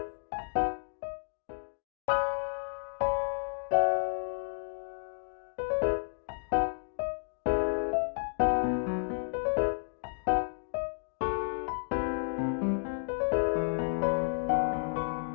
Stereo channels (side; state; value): right; silent; digital silence